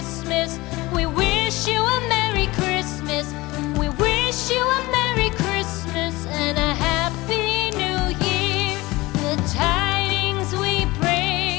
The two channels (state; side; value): quieter; right; 20.9 dB